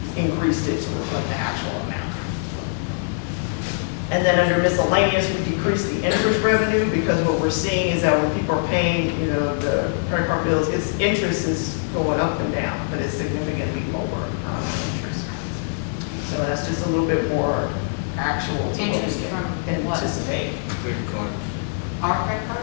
increased it to reflect the actual amount. And then under miscellaneous, we decreased the interest revenue because what we're seeing is that when people are paying, the credit card bills, its interest is going up and down, but it's significantly lower interest. So that's just a little bit more actual to what Interest we from what? anticipate. Our credit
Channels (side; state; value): right; silent; 59 dB below the other